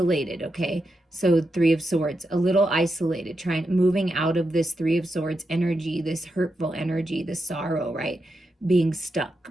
okay? So 3 of Swords, a little isolated, moving out of this 3 of Swords energy, this hurtful energy, this sorrow, right? Being stuck,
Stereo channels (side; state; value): both; normal; correlation 0.86